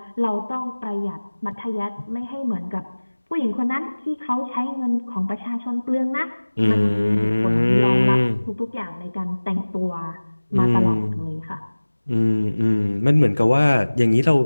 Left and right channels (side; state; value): both; inverted; correlation -1.00